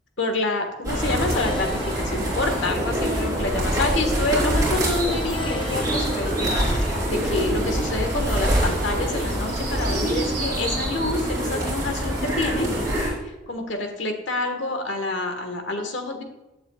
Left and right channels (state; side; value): normal; both; correlation 0.42